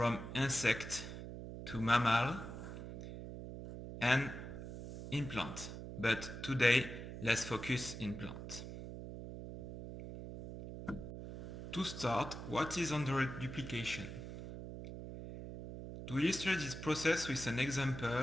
insect to mammal and in plant. But today, let's focus in plant. To start, what is endoreduplication? To illustrate this process with an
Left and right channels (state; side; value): noise; right; hum, 9 dB below the sound